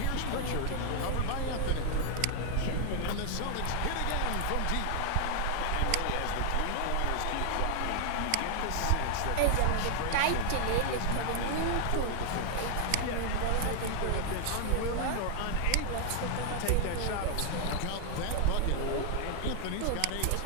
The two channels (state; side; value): different; both; correlation -0.01